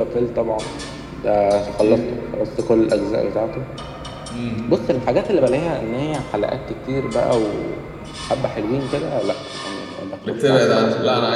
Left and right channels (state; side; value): identical; both; correlation 1.00